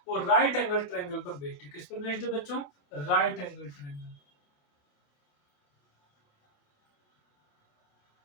वो राइट एंगल ट्रायंगल पर बेस्ड है। किस पर बेस्ड है बच्चों? Right angle triangle.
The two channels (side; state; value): right; late; 28 ms